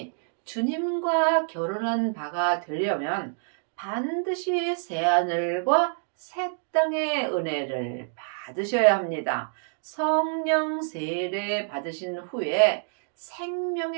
주님과 결혼한 바가 되려면 반드시 새하늘과 새 땅의 은혜를 받으셔야 합니다. 성령 세례 받으신 후에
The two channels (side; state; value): left; silent; digital silence